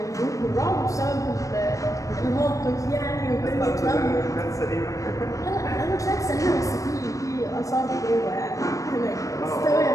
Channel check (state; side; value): late; right; 0.16 ms